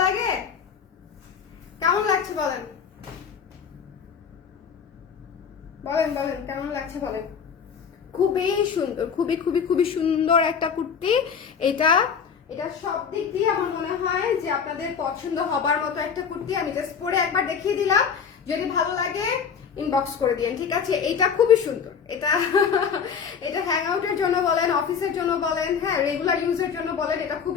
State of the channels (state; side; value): quieter; right; 6.7 dB